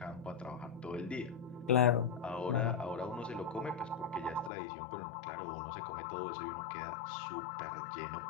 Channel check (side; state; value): right; drops out; at 4.5 s